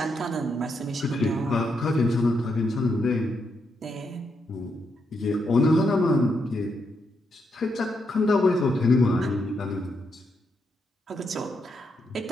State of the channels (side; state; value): both; normal; correlation 0.80